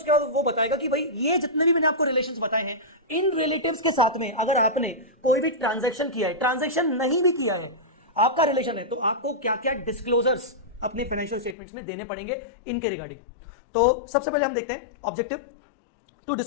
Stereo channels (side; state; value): right; drops out; at 11.6 s